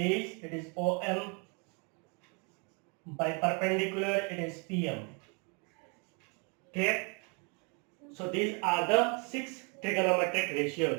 it is OM. By perpendicular, it is PM. Clear? So these are the 6 trigonometric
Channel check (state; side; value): quieter; left; 34.5 dB